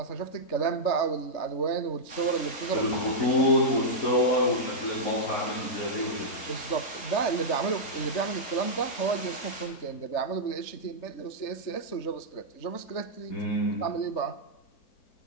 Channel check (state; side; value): late; right; 3.7 ms